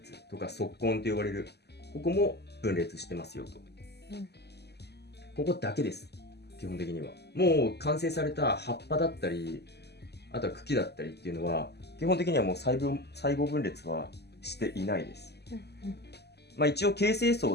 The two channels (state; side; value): late; right; 0.49 ms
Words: つとか側根と呼ばれる、ここも分裂してますよと。ここだけです、基本的には。もう完成された葉っぱだったり、あとは茎だったりっていうのは基本的にはもう細胞分裂はしていないです。一応形成層